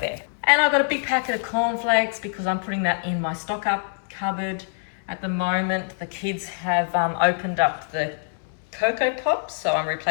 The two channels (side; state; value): right; silent; 61 dB below the other